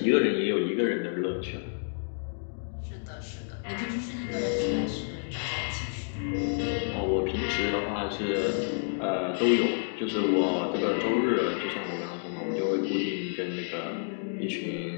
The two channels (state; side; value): silent; right; digital silence